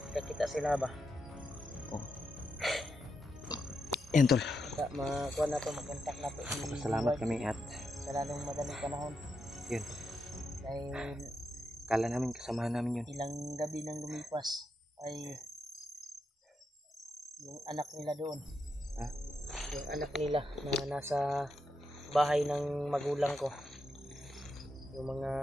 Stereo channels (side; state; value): both; normal; correlation 0.84